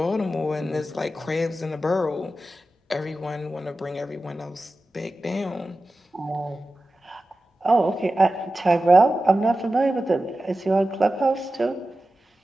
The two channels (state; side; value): normal; both; correlation 0.94